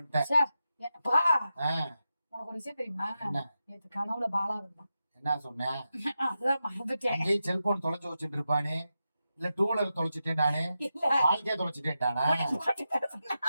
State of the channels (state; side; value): inverted; both; correlation -0.90